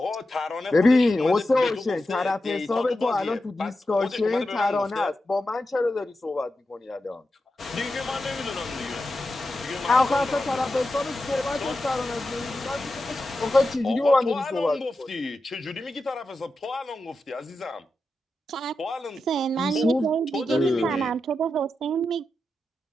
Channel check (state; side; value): normal; both; correlation 0.90